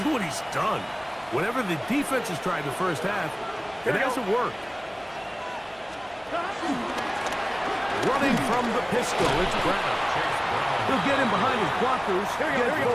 at what he's done. Whatever the defense has tried the first half, it hasn't worked. Running from the pistol, it's Brown. He'll get him behind his blockers, get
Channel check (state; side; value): noise; right; hum, 30 dB below the sound